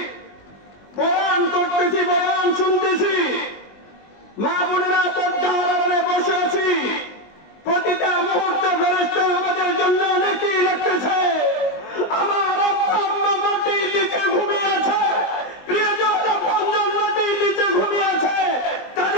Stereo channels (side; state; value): right; late; 20 ms